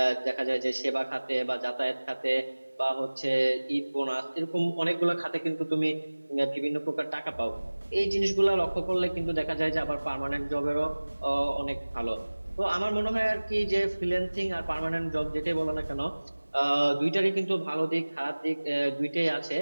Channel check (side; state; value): both; inverted; correlation -1.00